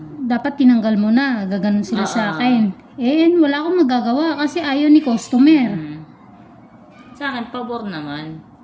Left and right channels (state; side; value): identical; both; correlation 1.00